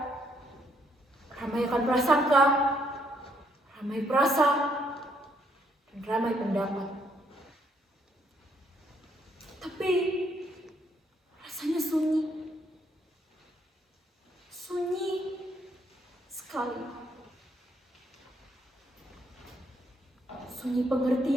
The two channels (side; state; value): both; normal; correlation 0.71